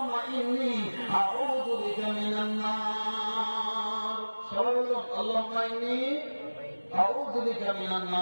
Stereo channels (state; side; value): inverted; both; correlation -1.00